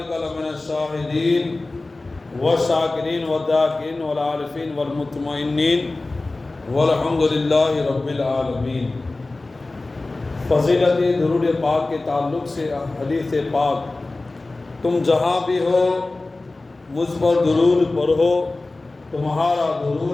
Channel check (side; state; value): right; quieter; 3.1 dB